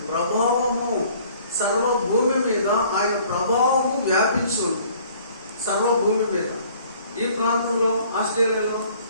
ప్రభావము, సర్వభూమి మీద ఆయన ప్రభావము వ్యాపించి ఉంది. సర్వభూమి మీద. ఈ ప్రాంతంలో, ఆస్ట్రేలియాలో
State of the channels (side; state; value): both; inverted; correlation -0.55